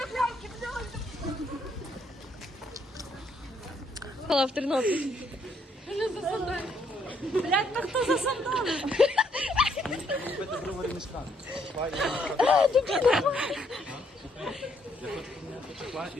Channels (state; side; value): normal; both; correlation 0.70